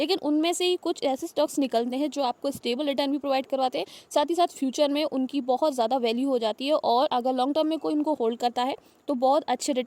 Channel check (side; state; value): both; identical; correlation 1.00